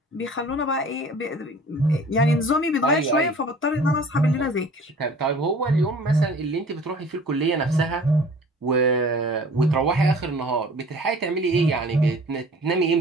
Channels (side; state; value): both; normal; correlation 0.47